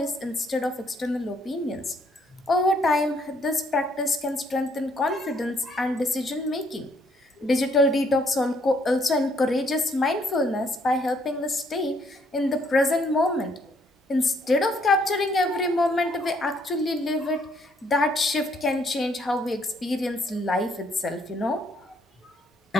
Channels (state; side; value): normal; both; correlation 0.68